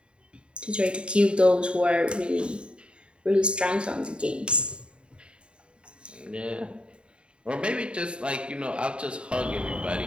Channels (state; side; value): late; left; 0.054 ms